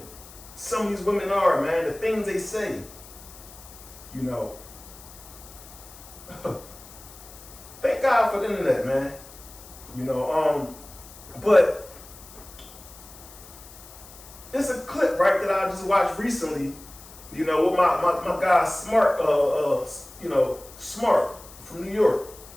some of these women are, man. The things they say, Thank God for the internet, man. But it's a clip, right, that I just watched recently, with my guy Smart, Smart from New York.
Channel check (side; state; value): left; noise; hiss, 19 dB below the sound